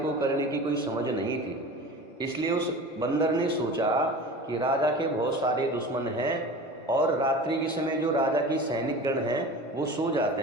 करने की कोई समझ नहीं थी। इसलिए उस बंदर ने सोचा कि राजा के बहुत सारे दुश्मन हैं और रात्रि के समय जो राजा की सैनिक गण हैं वो सो जाते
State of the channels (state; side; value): normal; both; correlation 0.36